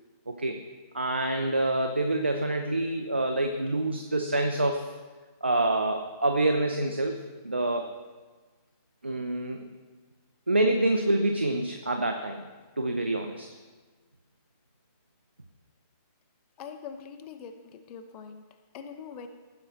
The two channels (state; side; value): inverted; both; correlation -0.74